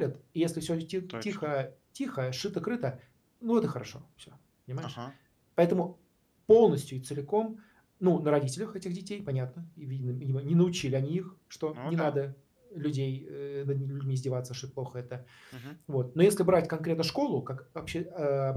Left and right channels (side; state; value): both; identical; correlation 1.00